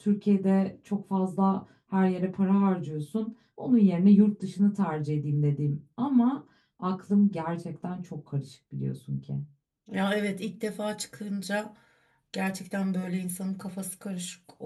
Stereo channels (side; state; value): both; identical; correlation 1.00